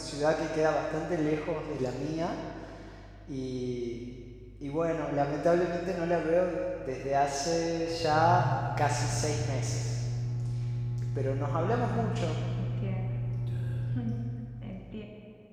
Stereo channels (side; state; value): both; identical; correlation 1.00